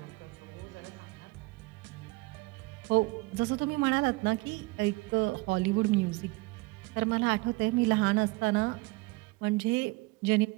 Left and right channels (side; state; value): left; quieter; 23.7 dB